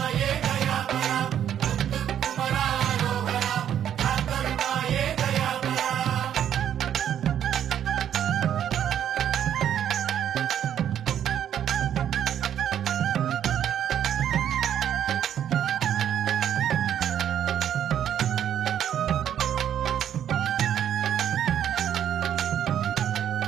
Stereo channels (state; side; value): quieter; left; 9.9 dB